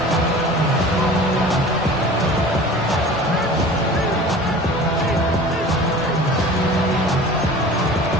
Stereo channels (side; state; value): both; normal; correlation 0.41